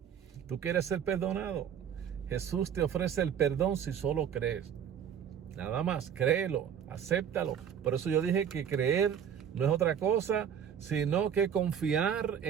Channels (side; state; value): left; quieter; 8.5 dB